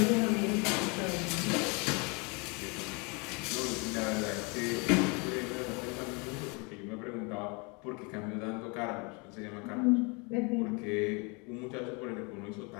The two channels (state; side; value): quieter; right; 31.2 dB